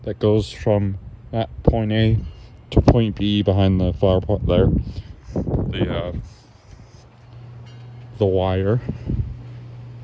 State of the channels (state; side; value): identical; both; correlation 1.00